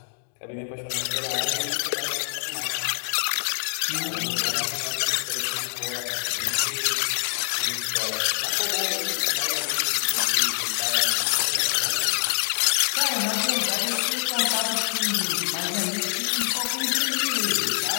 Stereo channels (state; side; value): silent; right; digital silence